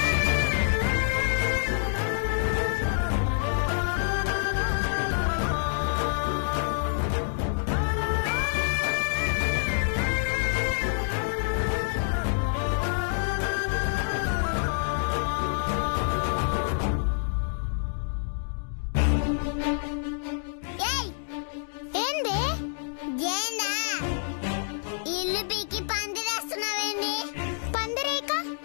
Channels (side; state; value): right; silent; digital silence